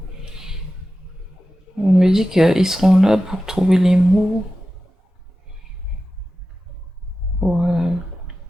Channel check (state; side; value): normal; both; correlation 0.93